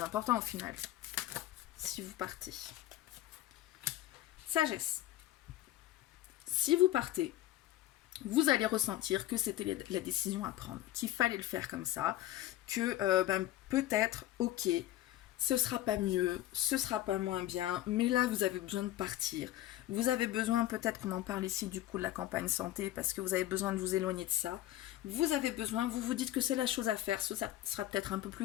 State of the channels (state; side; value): quieter; right; 14.3 dB